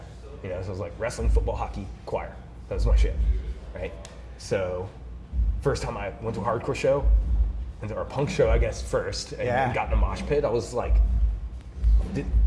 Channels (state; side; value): identical; both; correlation 1.00